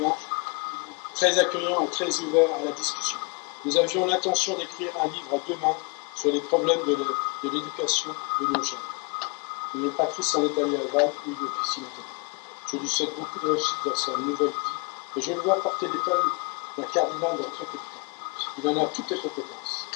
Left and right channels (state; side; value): quieter; right; 32.0 dB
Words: très accueillant et très ouvert à la discussion. Nous avions l'intention d'écrire un livre à 2 mains sur les problèmes de l'éducation de nos jeunes. Mais Patrice s'en est allé à Vannes où il officie maintenant. Je lui souhaite beaucoup de réussite dans sa nouvelle vie et je le vois porter l'école d'un cardinal dans très peu de temps. Il en a toutes les compétences.